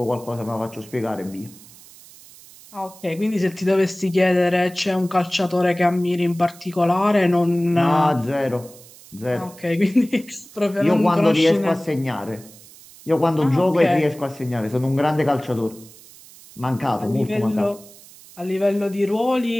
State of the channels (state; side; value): noise; right; hiss, 21 dB below the sound